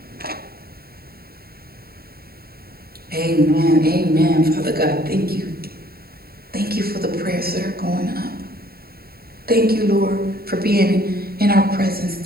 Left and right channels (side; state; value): left; late; 0.45 ms